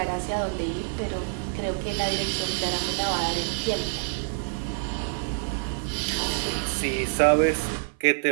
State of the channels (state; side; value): silent; left; 55 dB below the other